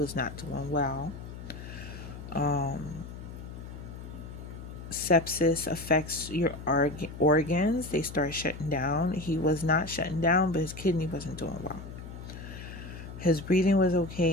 not doing well. Sepsis affects your organs. They start shutting down. He was not shutting down, but his kidney wasn't doing well. His breathing was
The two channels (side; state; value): left; noise; hum, 11 dB below the sound